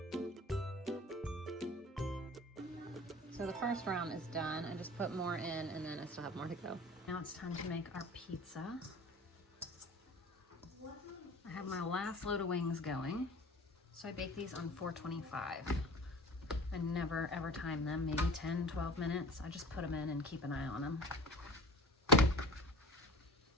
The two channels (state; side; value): normal; both; correlation 0.39